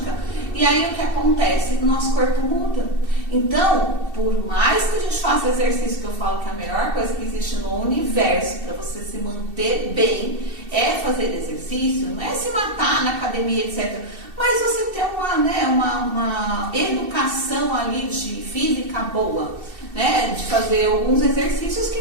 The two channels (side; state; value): left; late; 2.7 ms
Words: e aí o que acontece? O nosso corpo muda. Então, por mais que a gente faça exercício, que eu falo que é a melhor coisa que existe no universo para você se manter bem, é fazer exercício, não é se matar na academia, etc., mas você ter uma educação ali de física boa, né? De fazer alguns exercícios que